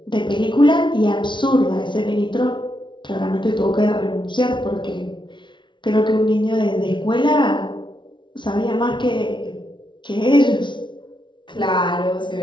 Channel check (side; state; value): right; late; 0.23 ms